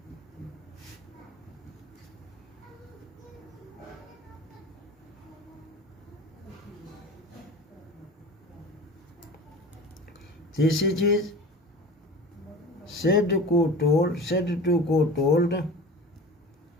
तीसरी चीज, सेड टू को टोल्ड, सेज टू को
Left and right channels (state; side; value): normal; both; correlation 0.36